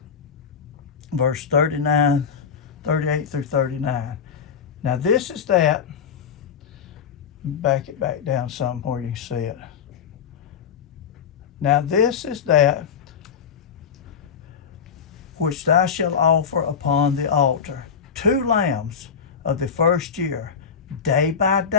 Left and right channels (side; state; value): right; quieter; 6.9 dB